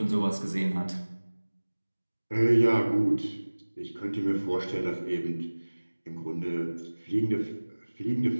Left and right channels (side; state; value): both; inverted; correlation -1.00